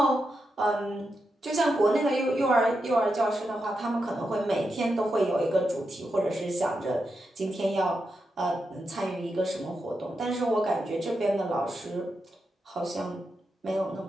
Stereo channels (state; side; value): normal; both; correlation 0.86